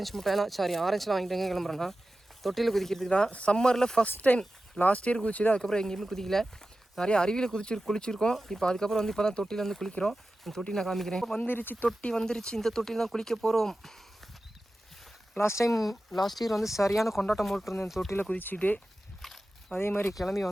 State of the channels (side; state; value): both; normal; correlation 0.94